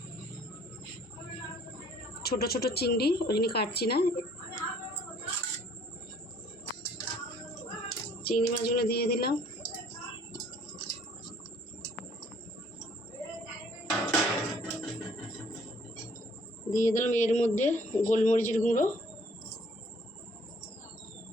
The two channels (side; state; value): both; normal; correlation 0.59